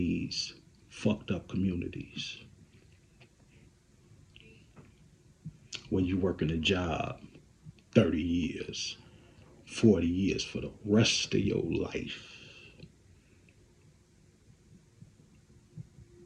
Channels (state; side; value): identical; both; correlation 1.00